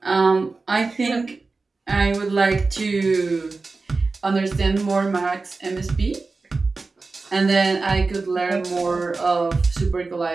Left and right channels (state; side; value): quieter; left; 3.9 dB